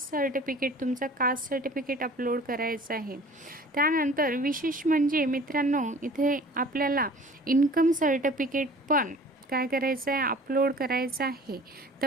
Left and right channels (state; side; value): normal; both; correlation 0.47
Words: सर्टिफिकेट, तुमचं कास्ट सर्टिफिकेट अपलोड करायचं आहे. त्यानंतर विशेष म्हणजे मित्रांनो, इथे आपल्याला इन्कम सर्टिफिकेट पण काय करायचं आहे, अपलोड करायचं आहे.